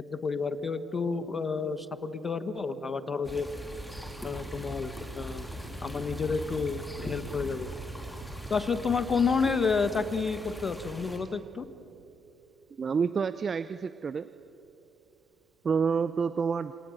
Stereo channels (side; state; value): both; normal; correlation 0.79